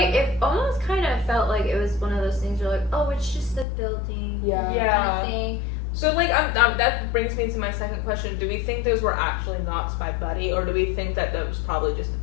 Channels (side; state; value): right; drops out; at 3.7 s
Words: almost kind of felt like it was one of those things where like, oh, it's just the building. Kind of thing. So like that brings me to my second question. Do we think those were actually knocks by Buddy, or do we think that was probably just the